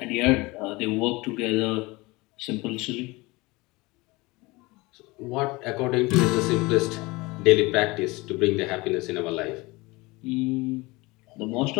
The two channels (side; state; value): right; quieter; 23.2 dB